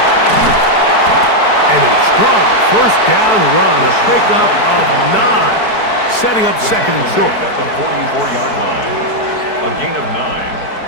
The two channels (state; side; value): late; right; 4.6 ms